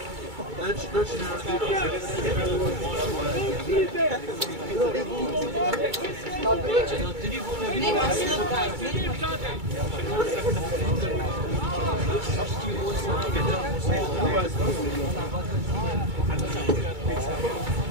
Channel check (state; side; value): late; left; 2.3 ms